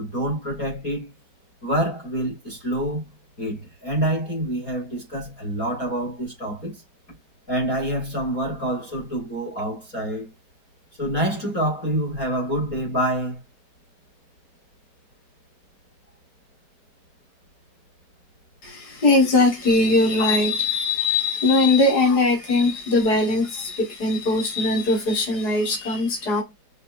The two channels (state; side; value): late; right; 4.8 ms